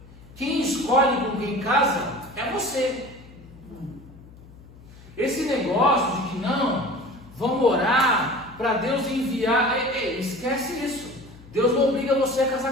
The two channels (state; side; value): noise; left; hum, 21 dB below the sound